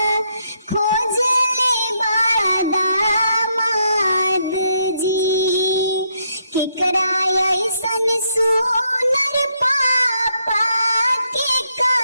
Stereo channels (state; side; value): inverted; both; correlation -0.76